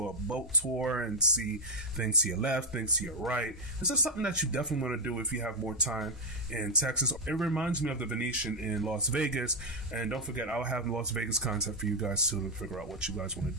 a boat tour and see things to your left, things to your right. This is something that you definitely want to do if you have more time in Texas. It reminds me of the Venetian in Las Vegas. And don't forget, I'll have Las Vegas content for you guys too, to figure out what you guys want to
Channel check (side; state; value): both; normal; correlation 0.01